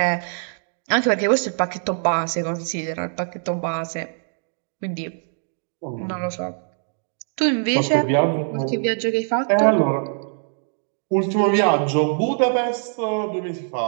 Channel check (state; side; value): silent; left; digital silence